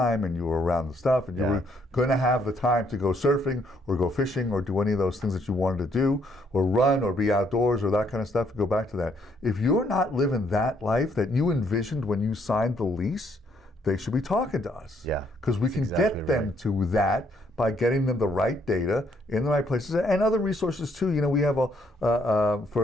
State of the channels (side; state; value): both; normal; correlation 0.69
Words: and you were around the stuff, and you were going to have the time to go surfing or go fishing or do any of those things that you wanted to do, or run or be outdoors or that kind of stuff. Go back to that. If you're not living that life that you envisioned when you signed the lease, they should be talking to us. Yeah, because we can get them to that by getting them the right data in the right places and other resources too. You know, we have